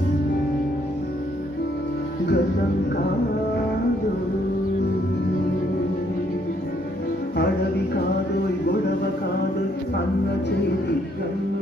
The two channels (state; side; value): normal; both; correlation 0.69